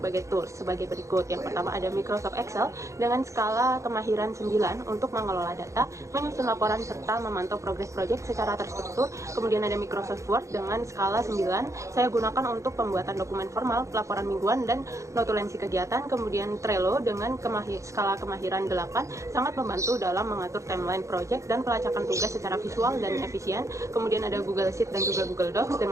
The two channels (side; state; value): left; late; 0.15 ms